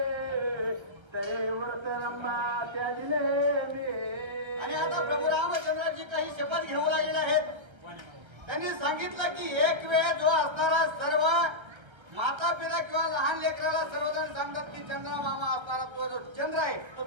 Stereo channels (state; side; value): late; left; 1.3 ms